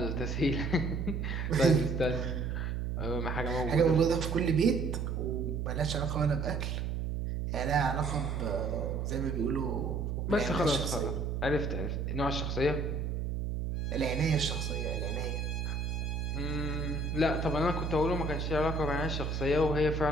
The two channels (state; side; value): noise; right; hum, 1 dB below the sound